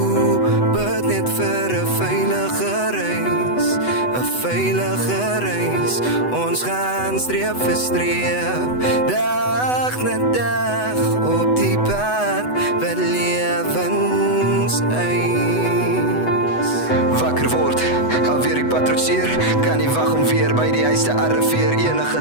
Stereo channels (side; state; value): right; late; 8.0 ms